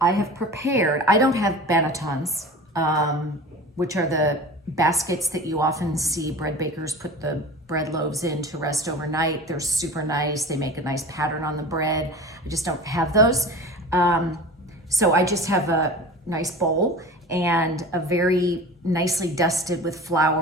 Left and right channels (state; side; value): normal; both; correlation 0.36